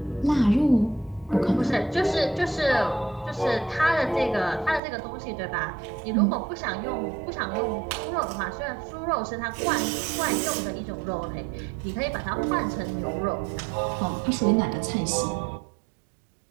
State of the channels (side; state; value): left; drops out; at 4.8 s